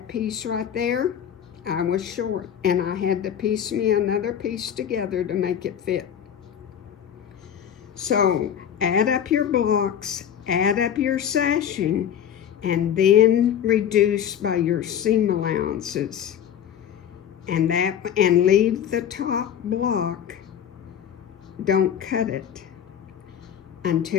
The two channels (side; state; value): right; quieter; 9.2 dB